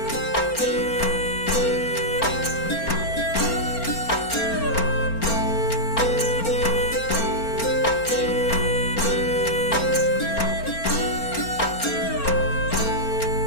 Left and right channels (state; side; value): late; right; 4.4 ms